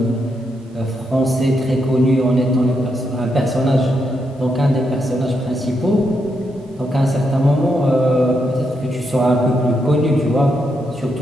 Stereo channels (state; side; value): normal; both; correlation 0.81